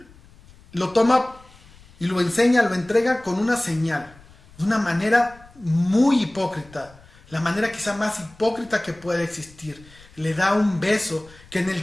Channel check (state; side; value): noise; left; rumble, 25 dB below the sound